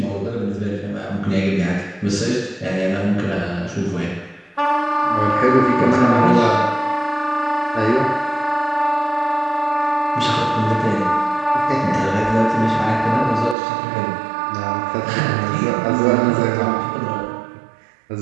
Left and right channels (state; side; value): drops out; left; at 13.6 s